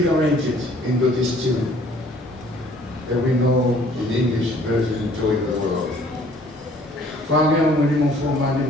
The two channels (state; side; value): normal; both; correlation 0.56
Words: it into this tune that we know in English version, Joy to the World. Whāmea mo ni mo whomani